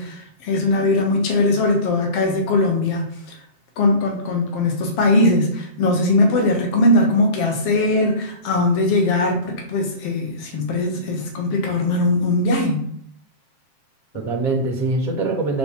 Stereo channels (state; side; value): late; right; 7.5 ms